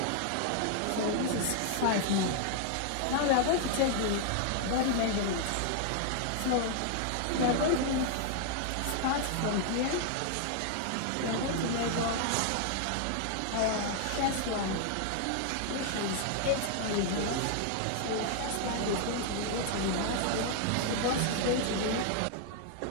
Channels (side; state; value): both; different; correlation 0.00